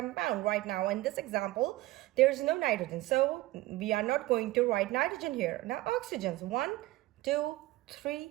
right now. In this example, there's no nitrogen. So we are not going to write nitrogen here. Now oxygens, 1, 2,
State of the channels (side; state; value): left; quieter; 18.1 dB